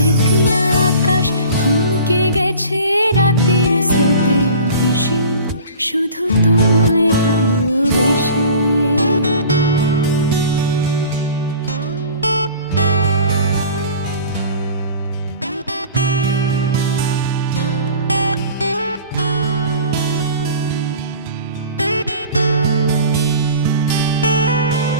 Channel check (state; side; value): inverted; both; correlation -0.42